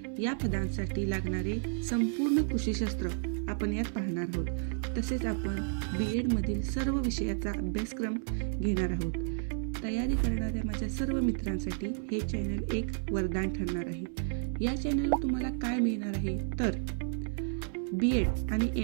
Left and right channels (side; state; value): left; silent; 57 dB below the other